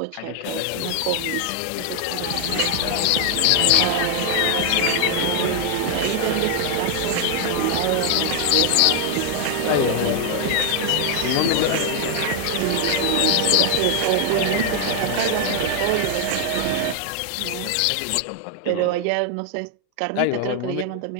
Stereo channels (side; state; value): both; different; correlation 0.00